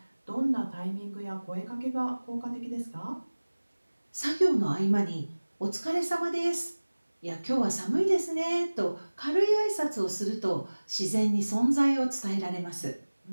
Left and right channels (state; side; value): inverted; both; correlation -1.00